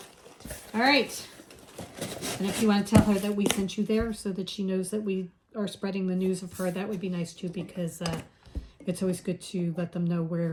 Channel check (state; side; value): identical; both; correlation 1.00